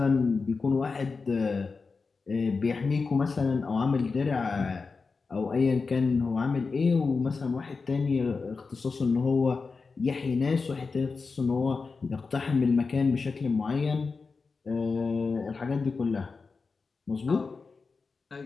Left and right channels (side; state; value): right; quieter; 4.5 dB